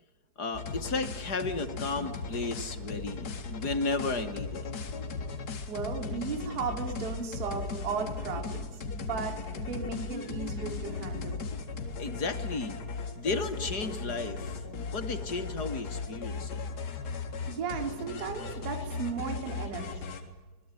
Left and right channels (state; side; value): late; right; 4.7 ms